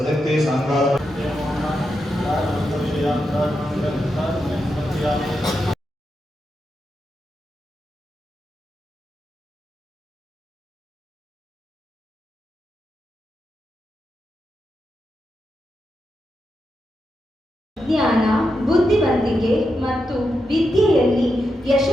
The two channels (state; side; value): normal; both; correlation 0.86